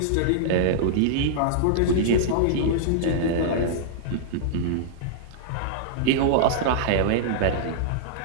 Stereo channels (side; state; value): both; different; correlation -0.01